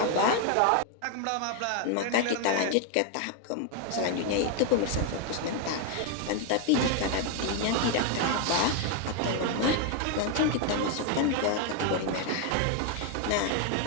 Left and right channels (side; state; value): both; different; correlation 0.01